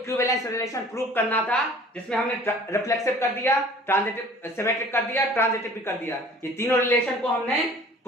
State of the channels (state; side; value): normal; both; correlation 0.49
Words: रिलेशन प्रूव करना था, जिसमें हमने रिफ्लेक्सिव कर दिया, ट्रांजिटिव सिमेट्रिक कर दिया, ट्रांजिटिव भी कर दिया, ये तीनों रिलेशन को हमने